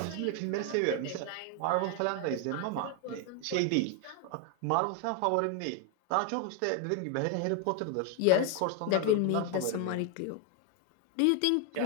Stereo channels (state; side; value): different; both; correlation 0.01